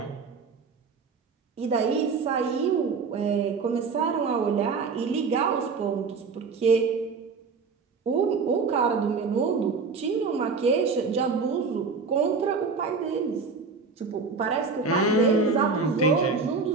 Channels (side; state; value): left; quieter; 4.8 dB